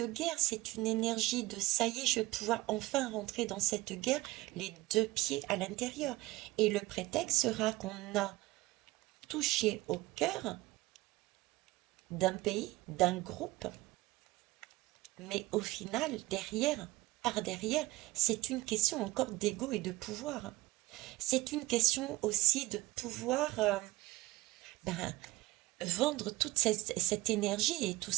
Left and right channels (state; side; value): quieter; left; 19.4 dB